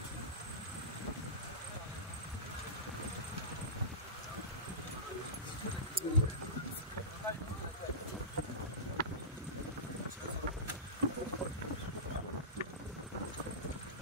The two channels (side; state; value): both; normal; correlation -0.19